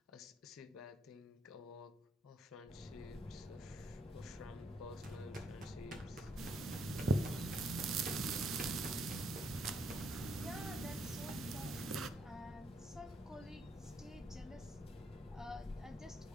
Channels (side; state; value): both; normal; correlation 0.74